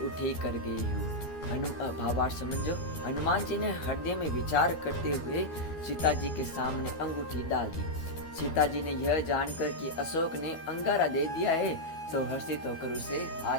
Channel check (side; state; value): right; late; 12 ms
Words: कर गई हूँ। भावार्थ समझो। हनुमान जी ने हृदय में विचार करते हुए सीता जी के सामने अंगूठी डाल दी। सीता जी ने यह जानकर कि अशोक ने अंगारा दे दिया है, तो हर्षित होकर उसे